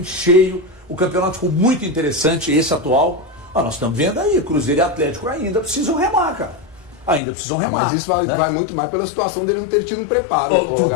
cheio. O campeonato ficou muito interessante, esse atual. Nós estamos vendo aí, Cruzeiro e Atlético ainda precisam remar, cara. Ainda precisam remar. Mas isso vai muito mais pela situação dele não ter tido um preparo.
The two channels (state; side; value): drops out; right; at 7.2 s